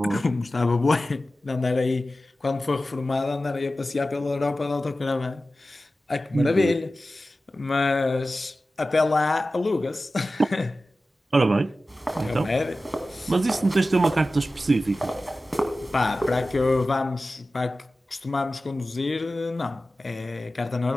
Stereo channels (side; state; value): both; normal; correlation 0.95